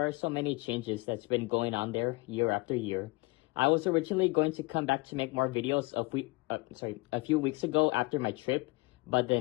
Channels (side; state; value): right; quieter; 24.6 dB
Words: are so many changes that's been going on there year after year. I was originally going to come back to make more videos a few weeks ago after my trip, but